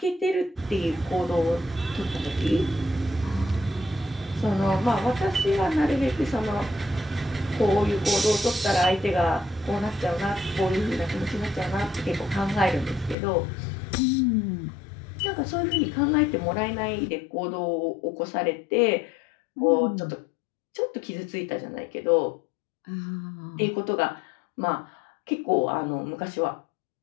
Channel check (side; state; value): right; drops out; at 13.2 s